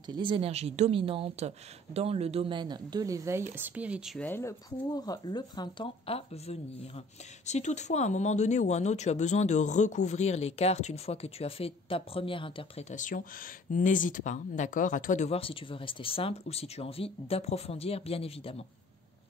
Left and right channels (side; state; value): both; normal; correlation 0.51